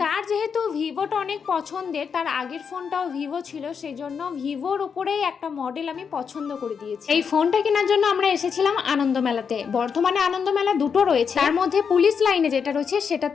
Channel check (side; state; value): right; quieter; 6.4 dB